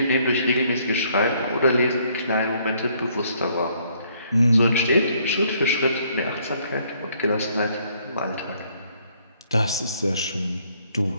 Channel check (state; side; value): inverted; both; correlation -0.66